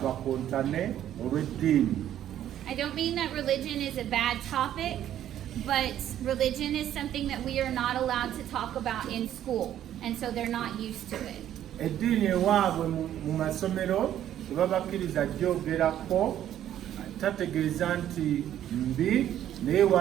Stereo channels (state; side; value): quieter; left; 11.3 dB